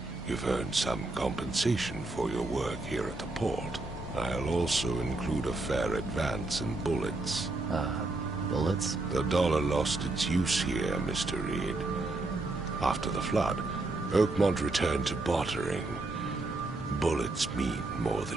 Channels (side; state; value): left; quieter; 3.0 dB